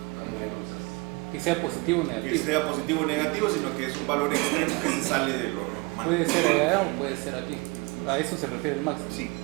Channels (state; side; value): quieter; left; 26.9 dB